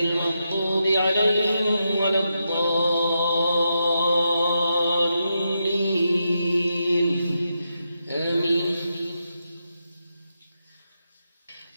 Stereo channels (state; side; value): inverted; both; correlation -0.85